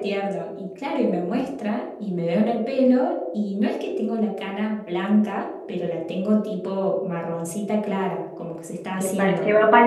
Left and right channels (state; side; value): identical; both; correlation 1.00